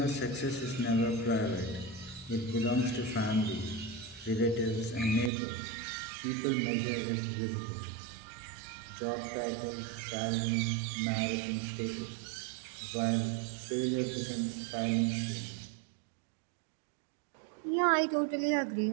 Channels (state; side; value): drops out; left; at 5.3 s